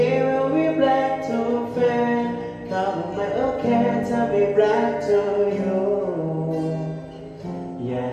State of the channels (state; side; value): identical; both; correlation 1.00